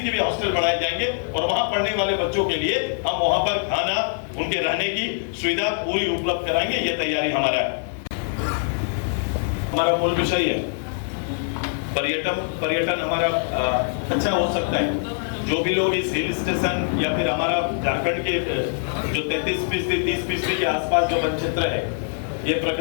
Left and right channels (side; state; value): right; silent; 56 dB below the other